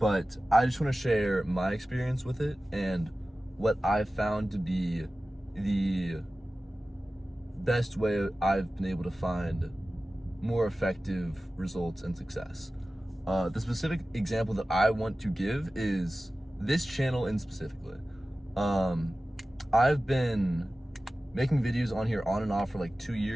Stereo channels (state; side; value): normal; both; correlation 0.96